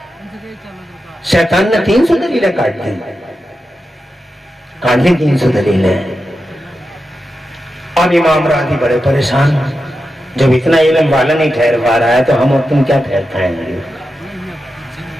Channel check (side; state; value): both; normal; correlation 0.90